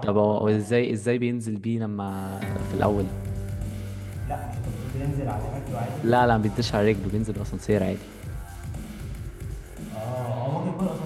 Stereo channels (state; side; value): identical; both; correlation 1.00